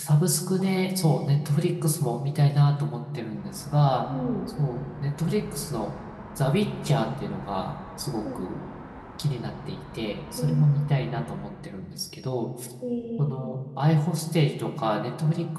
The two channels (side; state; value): both; identical; correlation 1.00